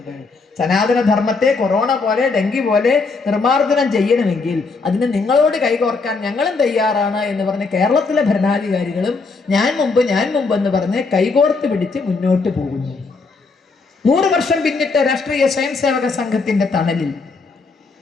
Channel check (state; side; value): quieter; right; 4.2 dB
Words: സനാതന ധർമ്മത്തെ കൊറോണ പോലെ, ഡെങ്കി പോലെ നിർമാർജനം ചെയ്യണമെങ്കിൽ അതിന് നിങ്ങളോട് കൈകോർക്കാൻ ഞങ്ങളും തയ്യാറാണ് എന്ന് പറഞ്ഞ് കേരളത്തിലെ ഭരണാധികാരികളും ഞാൻ മുമ്പ് എന്ന് പറഞ്ഞ് കൈകോർത്ത് പിടിച്ച് മുന്നോട്ട് പോകുന്നു. 100 വർഷം പിന്നിട്ട രാഷ്ട്രീയ സ്വയംസേവക സംഘത്തിന്റെ തണലിൽ